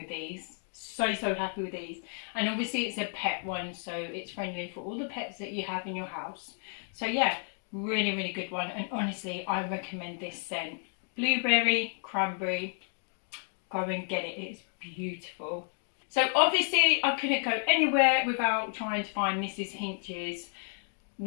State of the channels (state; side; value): silent; right; 56 dB below the other